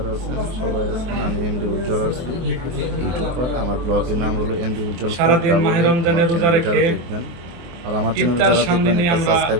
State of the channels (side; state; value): left; late; 24 ms